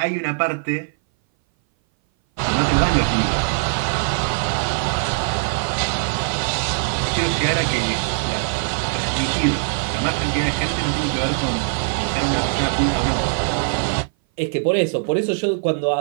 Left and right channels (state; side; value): silent; left; 59 dB below the other